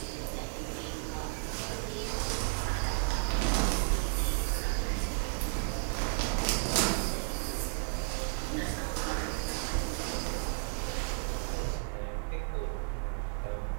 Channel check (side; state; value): left; silent; digital silence